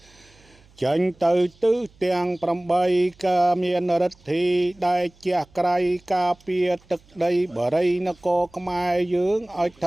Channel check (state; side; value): noise; right; hum, 29 dB below the sound